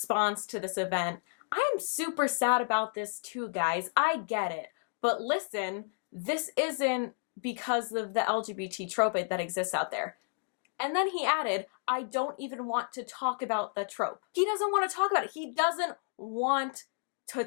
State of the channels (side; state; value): right; silent; digital silence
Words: to this event, I am super sad about this too, guys. I get it. But listen, this isn't because of the LGBT trope that exists out there. And then he added, I don't even want to talk about the trope. He doesn't want to talk about it. He doesn't want to